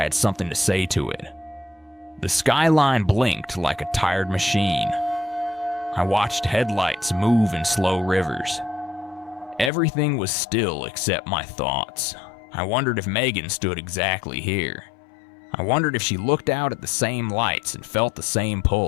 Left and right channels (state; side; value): drops out; right; at 9.7 s